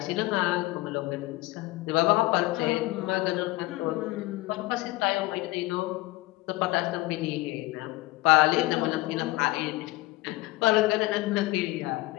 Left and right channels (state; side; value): quieter; right; 19.6 dB